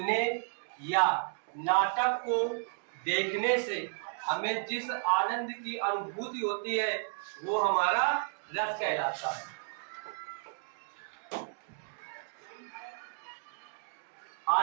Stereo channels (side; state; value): left; silent; digital silence